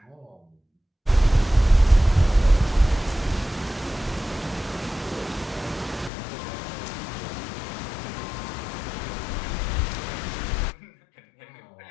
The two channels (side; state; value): right; drops out; at 6.1 s